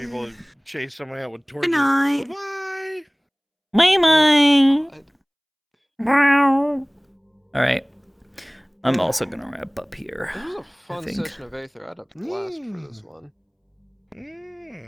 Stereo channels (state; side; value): identical; both; correlation 1.00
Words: chase somebody out with torches. Good night. Bye bye. All right. I'm also gonna wrap up here. This was a I fun think. session of Aether. I had a blast for this one.